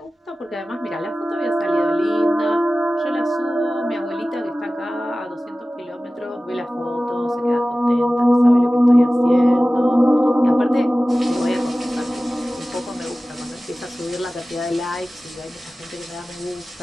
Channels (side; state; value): both; normal; correlation 0.96